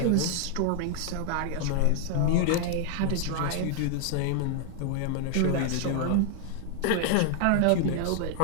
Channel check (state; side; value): different; both; correlation 0.00